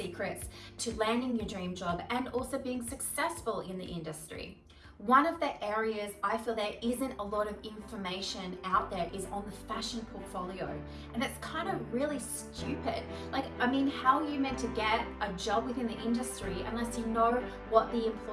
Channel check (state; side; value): identical; both; correlation 1.00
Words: to landing your dream job and also being successful in the industry. One of the areas I feel there isn't a lot of information out there is on the fashion portfolio. And it's kind of really stupid. How are you meant to get a job within the industry unless you know what the